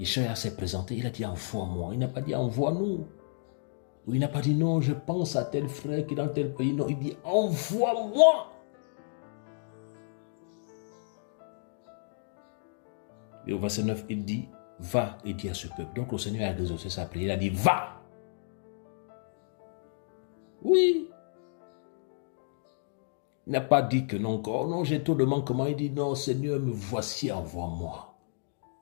s'est présenté, il a dit, envoie-moi. Il n'a pas dit, envoie-nous. Ou il n'a pas dit, non, je pense à tel frère qui est dans tel pays. Non, il dit, envoie-moi. Et au verset 9, il dit, va et dis à ce peuple. Donc le Seigneur a exaucé sa prière. Il a dit, va. Oui. Il n'a pas dit que non, oh non, j'ai trop de manquements. Il dit, non, Seigneur, me voici, envoie-moi.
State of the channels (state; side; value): silent; right; digital silence